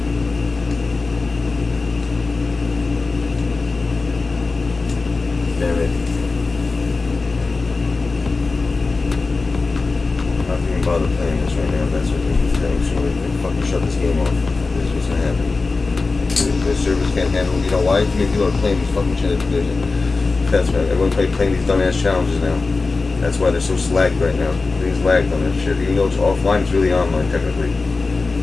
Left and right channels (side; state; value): right; quieter; 3.9 dB